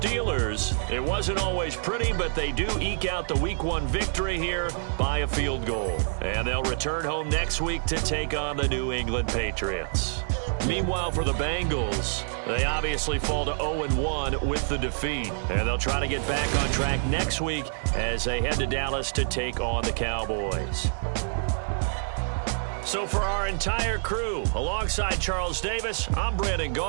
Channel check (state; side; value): silent; left; digital silence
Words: it wasn't always pretty, but they do eke out the Week 1 victory here by a field goal. And they'll return home next week to take on the New England Patriots. Meanwhile, for the Bengals, they obviously fall to 0-1 with the defeat. And they'll try to get back on track next week as they head to Dallas to take on the Cowboys. So for our entire crew, alongside Charles Davis, I'm Brandon